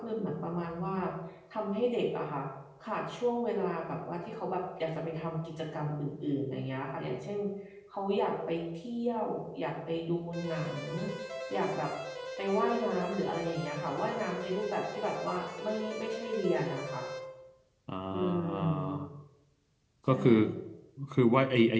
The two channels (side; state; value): both; identical; correlation 1.00